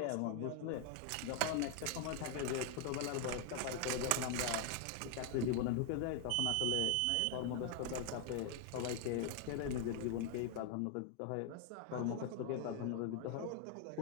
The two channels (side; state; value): both; different; correlation 0.00